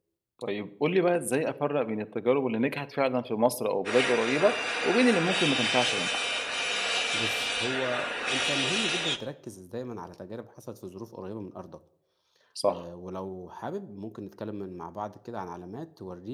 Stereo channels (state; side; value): identical; both; correlation 1.00